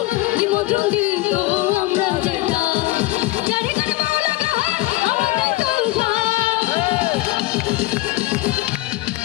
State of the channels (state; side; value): quieter; right; 18.4 dB